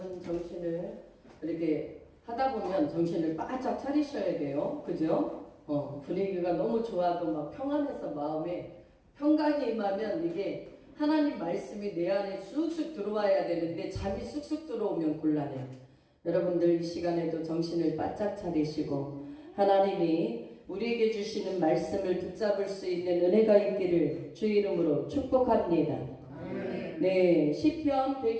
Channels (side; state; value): both; identical; correlation 1.00